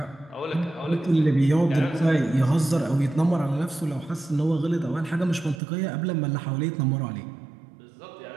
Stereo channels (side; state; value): left; drops out; at 5.6 s